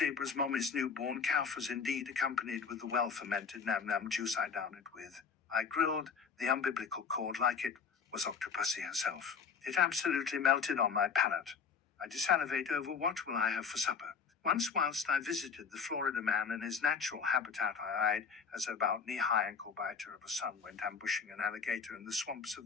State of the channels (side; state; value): right; quieter; 5.9 dB